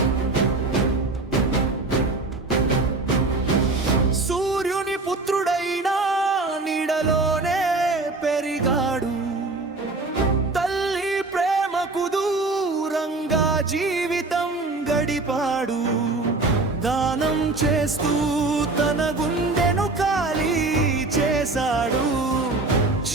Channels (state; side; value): quieter; left; 3.3 dB